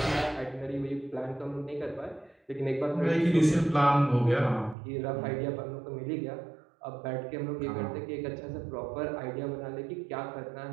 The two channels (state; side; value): drops out; left; at 4.8 s